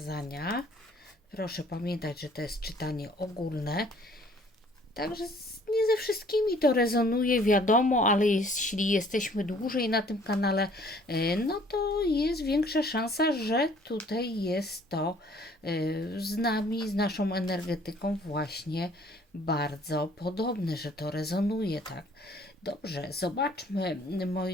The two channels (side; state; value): both; normal; correlation 0.57